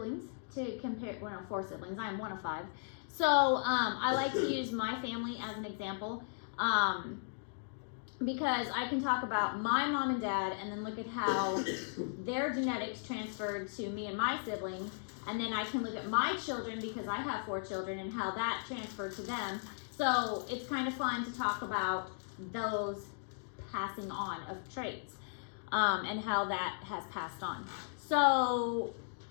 to compare. Well, no, 4 siblings. I am one of 5. So I like to use my family as an example because I can talk about my mom and dad and then look at how their genetics transferred to me and my siblings. And then I can look at my children because I have 4 children and how that transferred to them. So it's kind of fun to talk about those passing on of traits and how that has passed on. So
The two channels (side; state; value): right; silent; digital silence